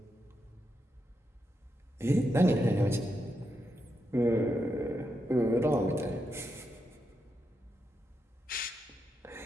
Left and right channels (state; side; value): normal; both; correlation 0.84